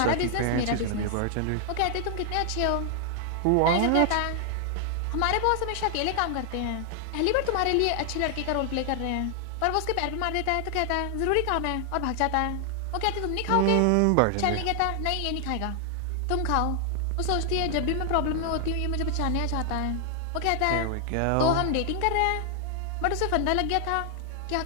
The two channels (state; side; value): different; both; correlation 0.00